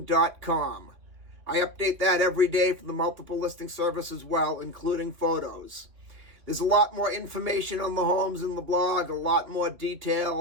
I update that every day for the multiple listing service as well, including photos. There's a lot more information on the homes in the blog, a lot more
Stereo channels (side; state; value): left; late; 2.9 ms